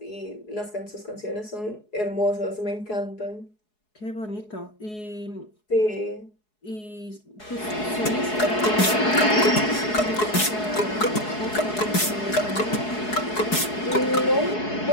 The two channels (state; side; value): late; right; 4.7 ms